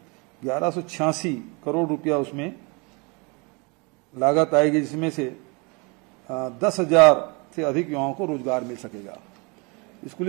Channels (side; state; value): left; quieter; 30.0 dB